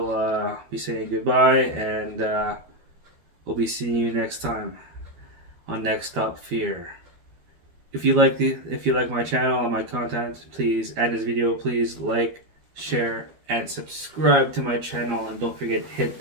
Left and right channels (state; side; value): late; left; 12 ms